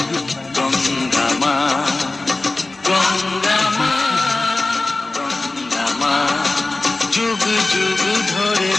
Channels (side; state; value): right; quieter; 3.1 dB